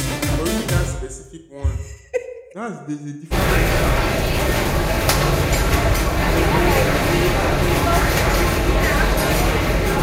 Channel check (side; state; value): both; identical; correlation 1.00